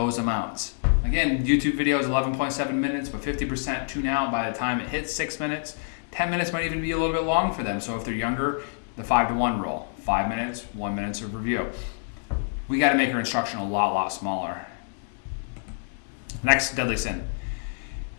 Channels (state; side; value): silent; right; digital silence